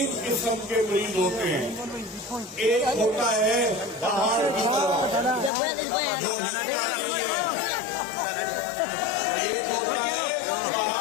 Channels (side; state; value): right; drops out; at 5.5 s